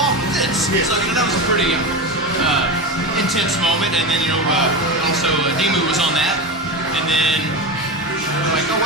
with this. Yeah. So, you know, that was a pretty intense moment. And then, you know, also Demu was on that. And then, like, oh,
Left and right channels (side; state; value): both; normal; correlation 0.21